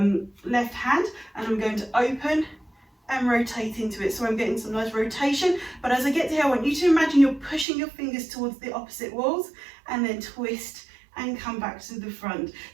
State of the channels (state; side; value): drops out; left; at 7.7 s